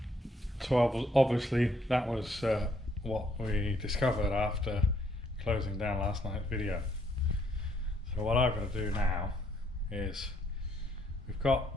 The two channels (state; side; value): normal; both; correlation 0.69